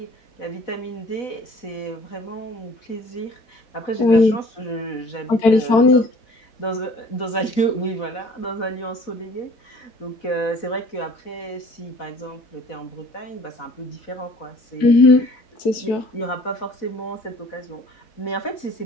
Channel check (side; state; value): right; late; 4.1 ms